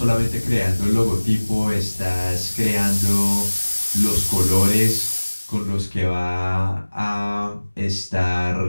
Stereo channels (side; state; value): both; inverted; correlation -1.00